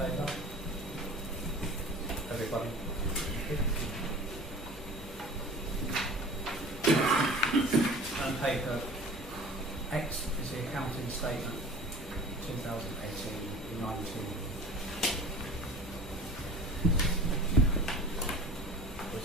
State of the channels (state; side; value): normal; both; correlation 0.41